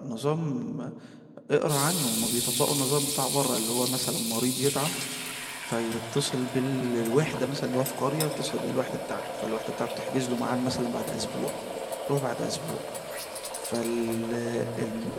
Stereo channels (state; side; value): identical; both; correlation 1.00